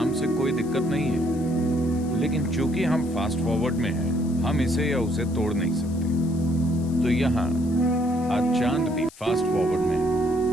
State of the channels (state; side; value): noise; left; hiss, 22 dB below the sound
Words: से कोई दिक्कत नहीं है, लेकिन चूंकि हम फास्ट फॉरवर्ड में हैं, हम इसे या उसे तोड़ नहीं सकते। तो यहाँ आज चांद भी फास्ट फॉरवर्ड में है।